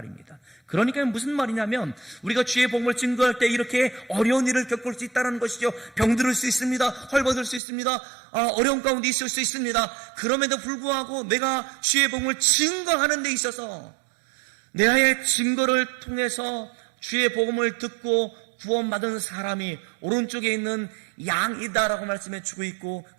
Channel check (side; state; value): left; drops out; at 7.6 s